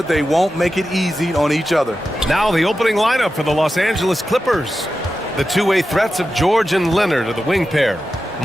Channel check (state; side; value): normal; both; correlation 0.92